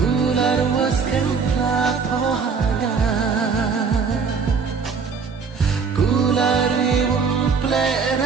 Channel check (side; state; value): left; quieter; 5.5 dB